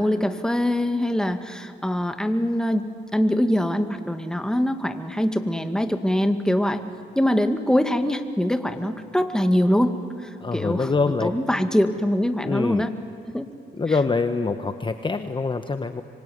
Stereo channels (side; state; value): both; normal; correlation 0.91